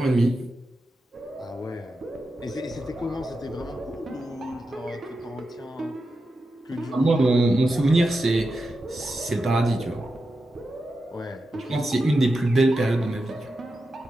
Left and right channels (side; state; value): both; normal; correlation 0.89